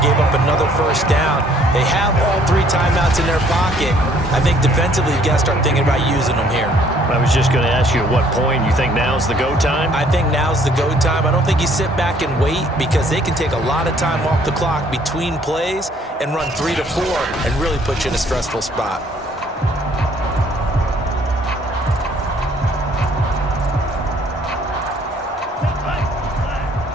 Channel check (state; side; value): normal; both; correlation 0.61